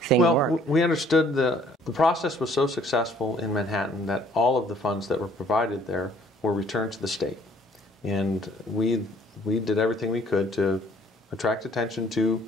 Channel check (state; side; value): normal; both; correlation 0.60